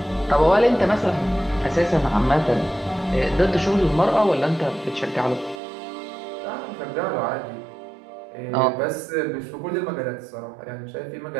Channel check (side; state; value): left; drops out; at 5.6 s